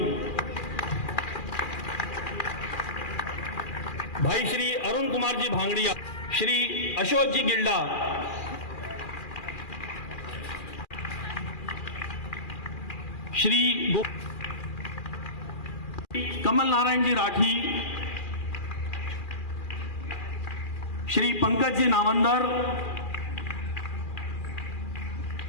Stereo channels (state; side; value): late; right; 2.4 ms